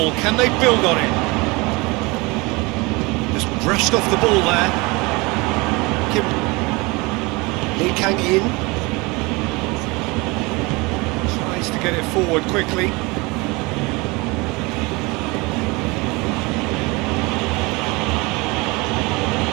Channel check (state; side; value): quieter; left; 25.3 dB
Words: Can they build on it? Just brushed off the ball there. Lee Kang-in. Tries to get it forward quickly.